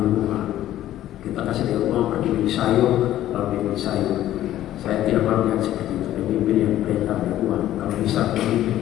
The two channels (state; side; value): quieter; right; 13.2 dB